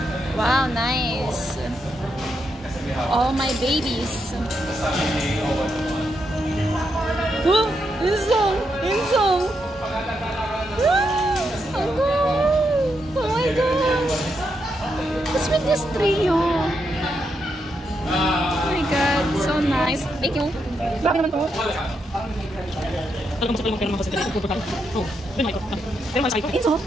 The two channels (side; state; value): both; normal; correlation 0.82